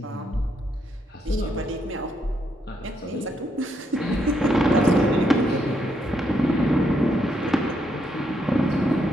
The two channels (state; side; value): normal; both; correlation 0.77